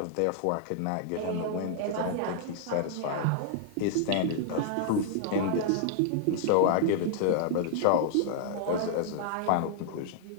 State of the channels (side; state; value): both; different; correlation -0.01